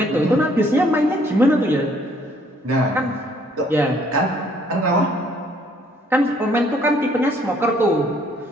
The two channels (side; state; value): both; normal; correlation 0.63